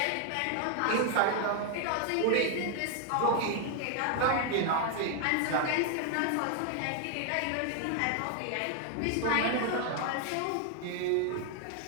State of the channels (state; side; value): different; both; correlation 0.00